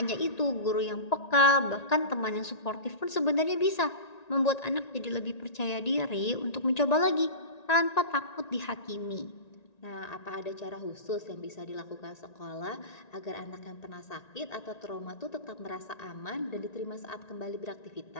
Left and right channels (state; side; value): late; right; 1.9 ms